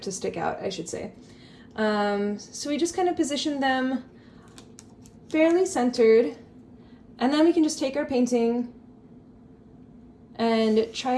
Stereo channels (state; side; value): identical; both; correlation 1.00